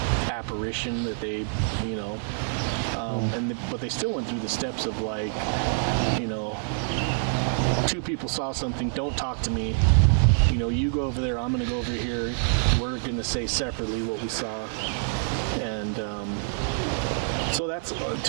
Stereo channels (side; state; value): left; silent; 56 dB below the other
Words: apparition that they, you know, but they still went through the steps of like, you know, 2 people saw something, don't talk to me. You know, you go over there, I'm going to go over here. We're going to say separately what we saw. And so that's,